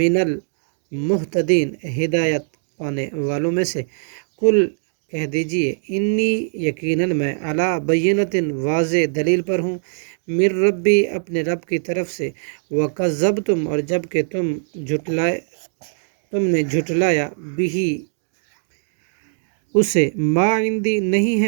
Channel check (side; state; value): left; silent; digital silence